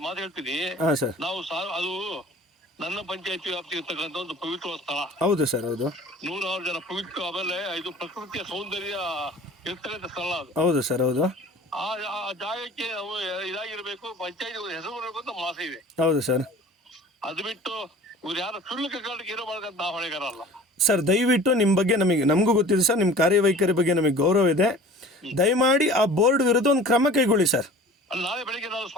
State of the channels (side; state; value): both; normal; correlation 0.44